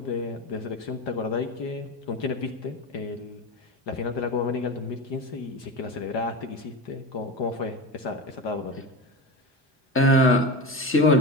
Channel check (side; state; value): both; normal; correlation 0.24